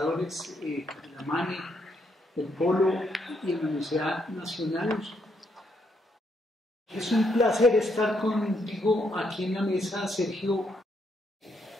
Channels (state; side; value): normal; both; correlation 0.76